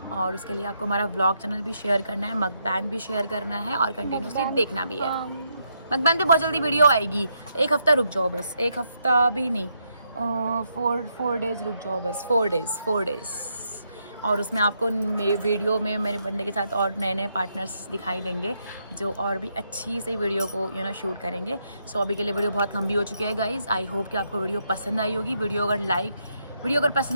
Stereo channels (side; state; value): both; inverted; correlation -0.78